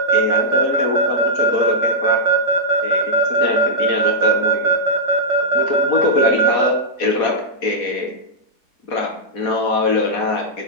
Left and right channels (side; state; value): right; late; 4.1 ms